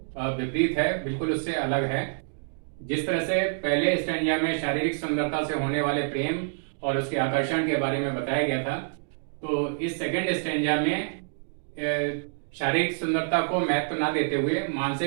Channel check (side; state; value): left; silent; digital silence